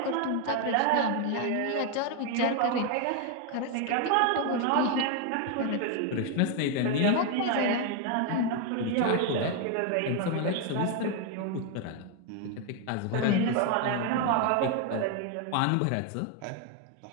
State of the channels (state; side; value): different; both; correlation 0.01